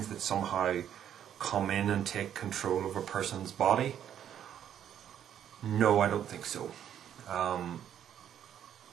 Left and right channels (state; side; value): quieter; left; 9.8 dB